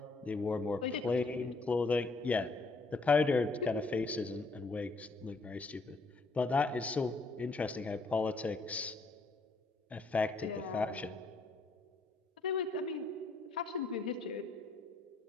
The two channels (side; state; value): right; quieter; 3.5 dB